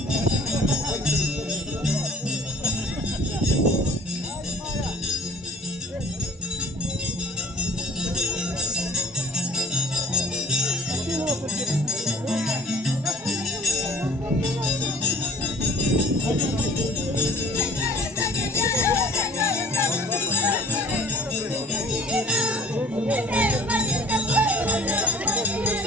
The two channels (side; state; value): both; normal; correlation 0.48